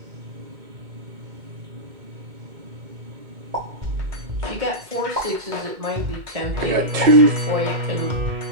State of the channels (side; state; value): left; late; 2.2 ms